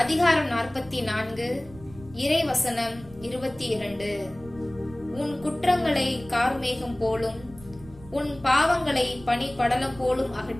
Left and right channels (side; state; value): right; noise; rumble, 20 dB below the sound